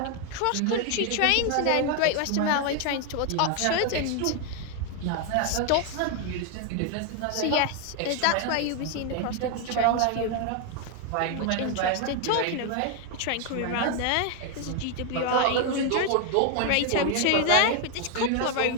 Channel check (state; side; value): different; both; correlation 0.01